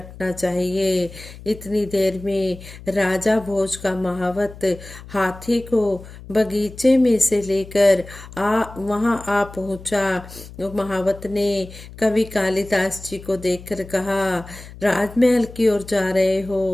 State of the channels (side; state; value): left; noise; hum, 16 dB below the sound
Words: चाहिए। इतनी देर में राजा भोज का महावत हाथी को बगीचे में से लेकर वहां आ पहुंचा। महावत ने कवि कालिदास जी को देखकर कहा, राजमहल की ओर जा रहे